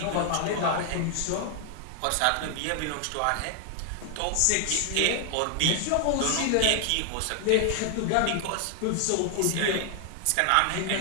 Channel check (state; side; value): different; both; correlation 0.00